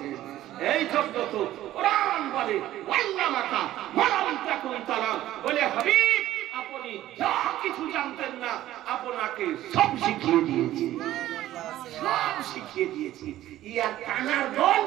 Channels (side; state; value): left; quieter; 14.1 dB